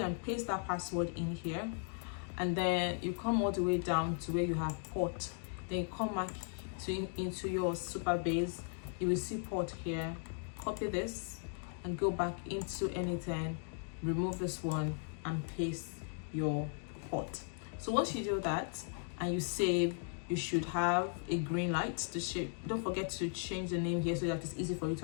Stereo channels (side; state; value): right; silent; 53 dB below the other